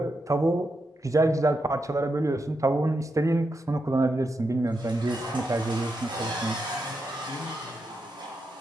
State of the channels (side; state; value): both; normal; correlation 0.85